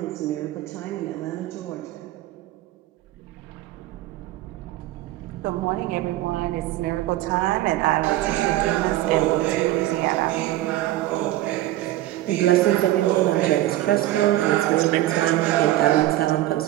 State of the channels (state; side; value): quieter; left; 15.3 dB